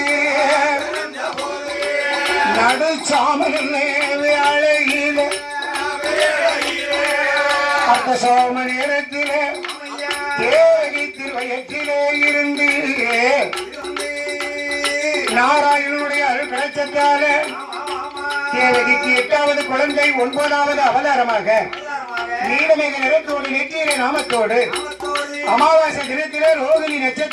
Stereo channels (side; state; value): both; identical; correlation 1.00